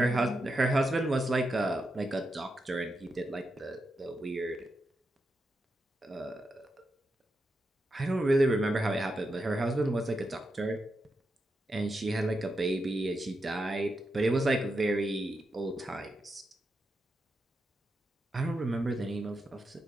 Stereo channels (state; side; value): normal; both; correlation 0.86